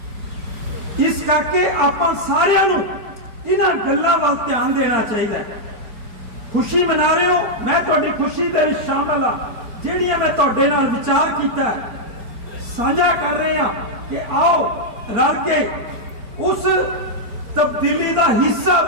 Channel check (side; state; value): left; late; 4.4 ms